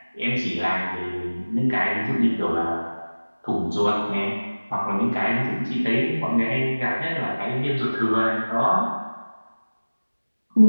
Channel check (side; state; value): both; inverted; correlation -1.00